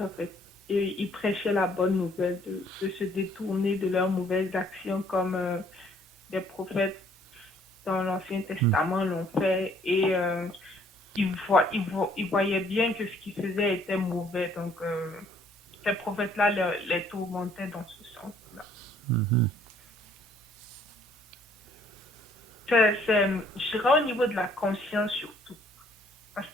en fait. Et ils prêchaient la bonne nouvelle de se détourner de leurs mauvaises actions, comme les prophètes dans l'Ancien Testament l'ont fait. Et ils voyaient bien que ce qu'ils faisaient était mauvais. Donc, ces prophètes-là les tourmentaient dans ce sens-là. Mhm. Je dirais au niveau de la conscience surtout. Parce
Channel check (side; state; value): both; normal; correlation 0.62